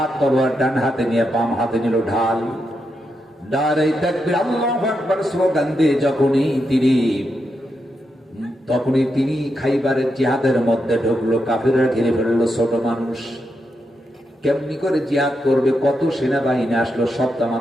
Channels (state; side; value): normal; both; correlation 0.84